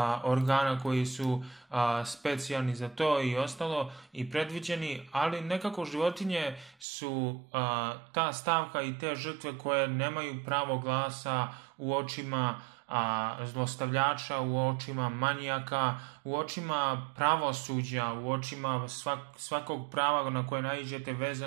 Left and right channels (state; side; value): drops out; left; at 6.9 s